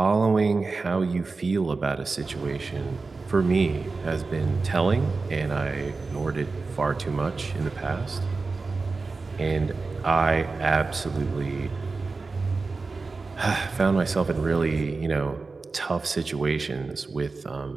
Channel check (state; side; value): quieter; left; 4.0 dB